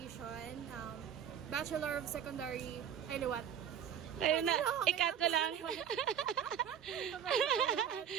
Bachelor of Secondary, ay liwat. Ayun na, ikat ko lang.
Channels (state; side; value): quieter; left; 8.8 dB